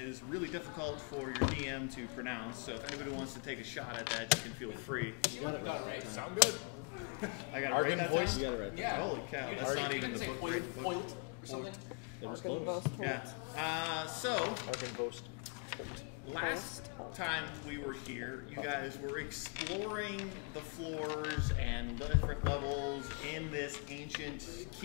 really difficult for your DM to pronounce. So if anybody wants to take a shot at that, you can feel free. You seem like you got it right. Sound good. I got it right that time? You got it right. Yeah. Holy cow. You that's didn't not say, you even didn't the say book, foiled, right? foiled or something? It was close. Yeah. So, last time we were here, you guys were exploring the floors and different levels in this ancient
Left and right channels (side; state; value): right; quieter; 34.8 dB